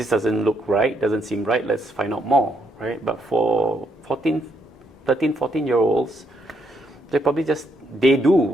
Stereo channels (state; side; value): normal; both; correlation 0.75